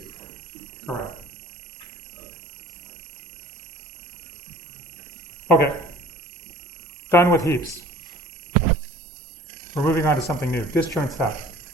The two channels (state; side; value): normal; both; correlation 0.48